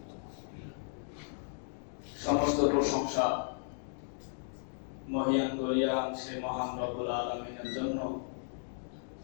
সমস্ত প্রশংসা মহিয়ান গরিয়ান সে মহান রব্বুল আলামিনের জন্য,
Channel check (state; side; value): silent; right; digital silence